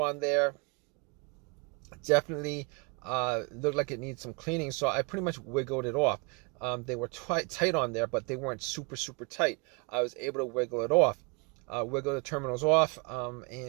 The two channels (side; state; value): left; quieter; 31.2 dB